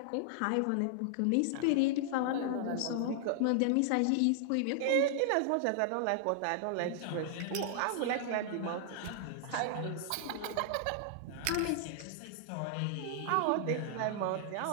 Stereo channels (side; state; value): both; different; correlation -0.01